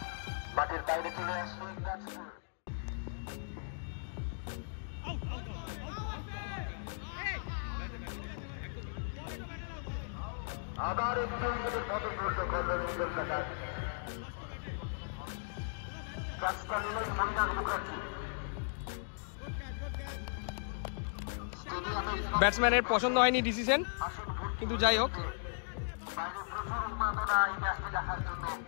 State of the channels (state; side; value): silent; right; digital silence